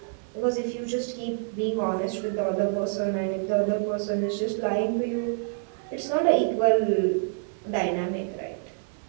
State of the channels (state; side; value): silent; left; digital silence